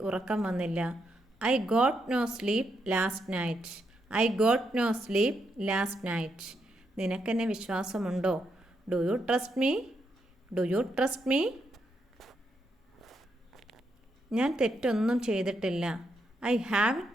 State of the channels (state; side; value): normal; both; correlation 0.80